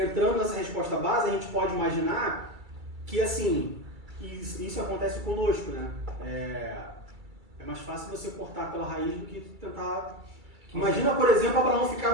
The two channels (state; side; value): late; left; 2.3 ms